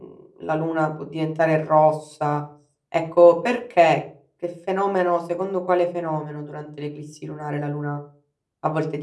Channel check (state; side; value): identical; both; correlation 1.00